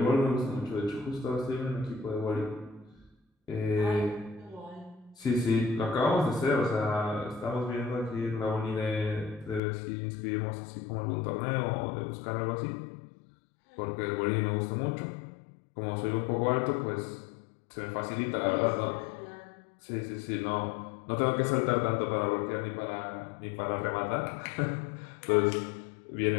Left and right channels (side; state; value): right; drops out; at 9.6 s